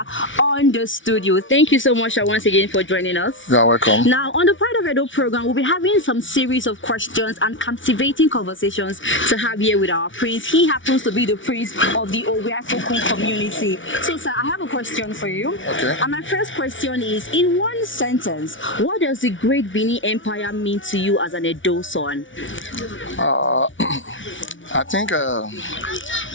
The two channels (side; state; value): right; late; 0.56 ms